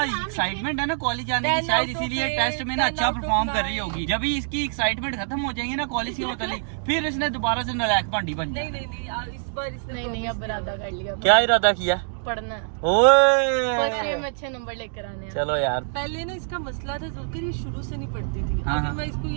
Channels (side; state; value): left; silent; digital silence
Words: एक्साइटमेंट है ना कॉलेज जाने की, शायद इसीलिए टेस्ट में ना अच्छा परफॉर्म कर रही होगी। जब ही इसकी एक्साइटमेंट खत्म हो जाएगी ना कॉलेज के मुतालिक, फिर इसने दोबारा से नालायक भांडी बन जाए। नहीं इस बार इसने नहीं अब इरादा कर लिया, क्या इरादा किया? पढ़ना। ओए फर्स्ट ईयर में अच्छे नंबर लेकर आने हैं। चलो यार, पहले ना इसका मसला था जुल्कर, ये शुरू से नहीं पढ़ती थी। हाँ, अभी मैं इसको